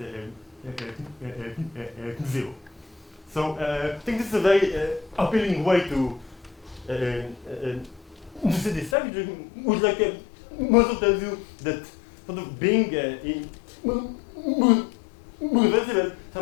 0. So I think this is a very appealing way to see this structure, which also tells you that sort of being reversible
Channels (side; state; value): right; drops out; at 9.0 s